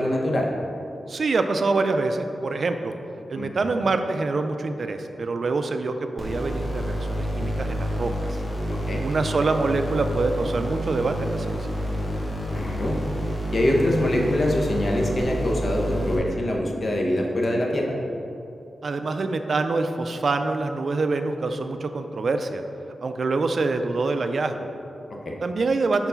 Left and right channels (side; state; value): both; normal; correlation 0.91